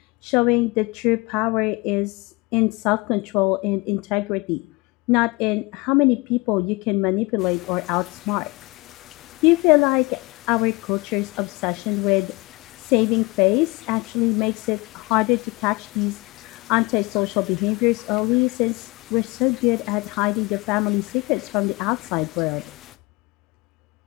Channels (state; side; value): quieter; right; 24.9 dB